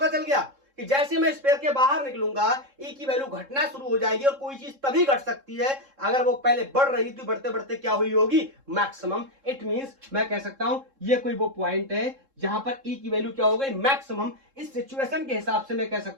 चल गया कि जैसे मैं स्फीयर के बाहर निकलूंगा, E की वैल्यू घटना शुरू हो जाएगी, और कोई चीज तभी घट सकती है अगर वो पहले बढ़ रही थी, बढ़ते बढ़ते क्या हुई होगी? मैक्सिमम। इट मींस मैं कह सकता हूं ये कोई वो पॉइंट है जहां पर E की वैल्यू क्या हो गई? मैक्सिमम। इस सिचुएशन के हिसाब से मैं कह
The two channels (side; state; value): left; late; 3.7 ms